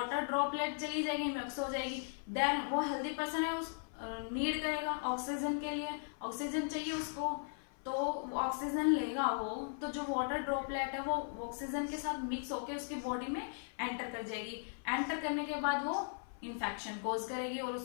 ड्रॉपलेट चली जाएगी, मिक्स हो जाएगी। देन वो हेल्दी पर्सन है उस नीड करेगा ऑक्सीजन के लिए, ऑक्सीजन चाहिए उसको, तो ऑक्सीजन लेगा वो, तो जो वाटर ड्रॉपलेट है वो ऑक्सीजन के साथ मिक्स होकर उसकी बॉडी में एंटर कर जाएगी। एंटर करने के बाद वो इन्फेक्शन कॉज करेगी और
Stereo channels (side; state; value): right; silent; 53 dB below the other